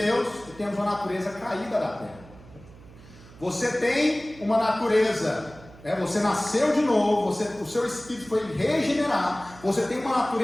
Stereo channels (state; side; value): noise; right; hum, 21 dB below the sound